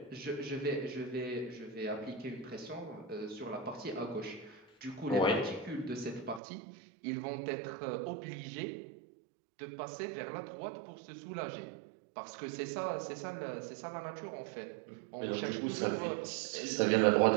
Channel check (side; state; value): left; drops out; at 6.4 s